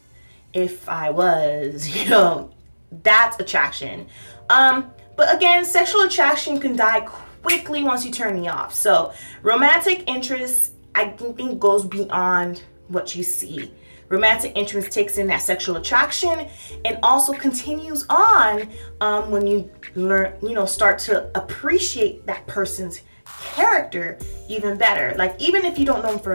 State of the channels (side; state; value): both; inverted; correlation -1.00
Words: if I was, that's attraction. But again, sexual attraction can die quickly once you turn me off. So romantic interest, I think, goes beyond what you see. Romantic interest takes in that sexual attraction and also continues on when you start to appreciate that person's character even better. Like, even if you don't know them